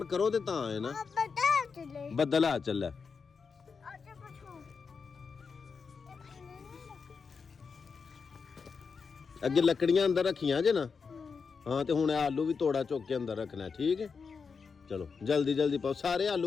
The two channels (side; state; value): right; quieter; 5.4 dB